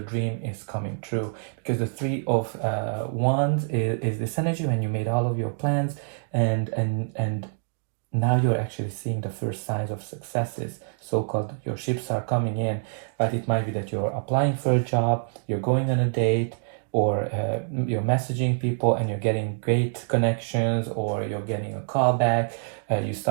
dream is coming true, because the Three of Wands is this energy when you made all of your plans, and now you're actually seeing the first signs of successes, so-called your ships are coming in. But it might be that you're applying for a job, you're going on a date, or you're messaging people and you're getting great connections, or you're getting a call back. You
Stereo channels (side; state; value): left; silent; digital silence